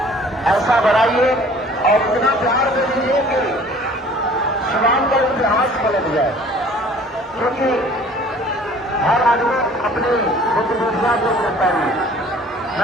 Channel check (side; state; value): both; normal; correlation 0.51